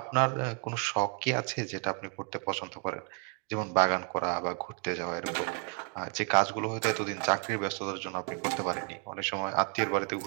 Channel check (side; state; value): left; quieter; 36.9 dB